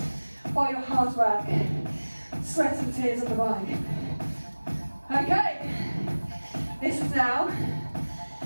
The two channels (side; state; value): both; inverted; correlation -1.00